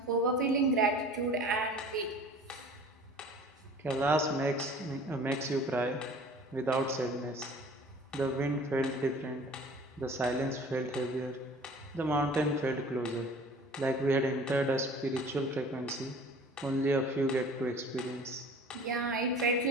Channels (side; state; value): both; normal; correlation 0.46